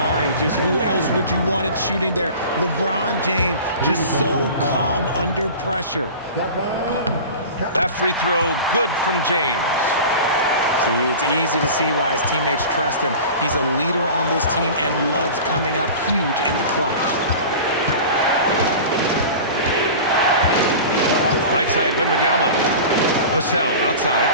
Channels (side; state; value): both; inverted; correlation -0.36